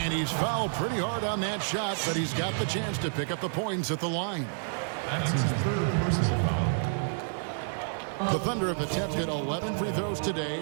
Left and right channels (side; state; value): left; silent; digital silence